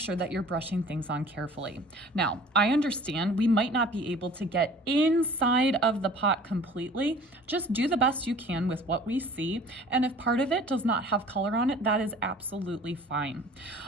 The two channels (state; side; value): normal; both; correlation 0.47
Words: that you're brushing things on carefully. Now, I understand we might not be able to get inside of the pot completely. Just do the best you can with what we see. And if part of it does not have color on it, that is absolutely fine.